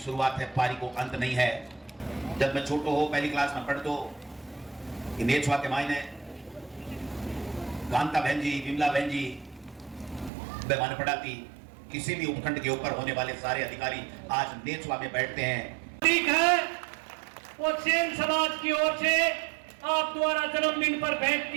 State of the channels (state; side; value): drops out; left; at 10.3 s